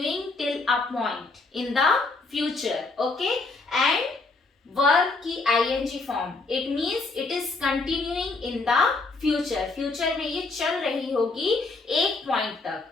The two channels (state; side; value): quieter; right; 3.6 dB